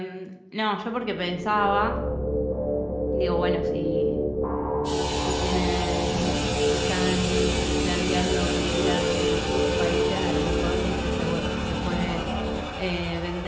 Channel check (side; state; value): both; identical; correlation 1.00